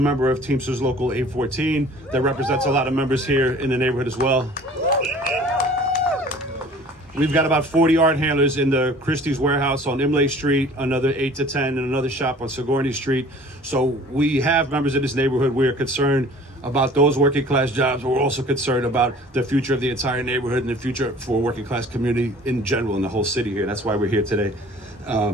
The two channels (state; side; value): normal; both; correlation 0.48